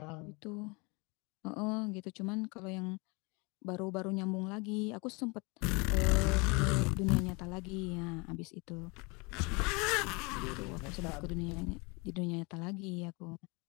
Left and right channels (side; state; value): right; quieter; 28.6 dB